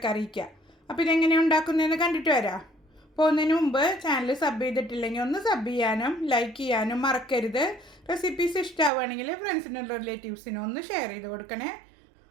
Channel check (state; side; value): drops out; left; at 8.9 s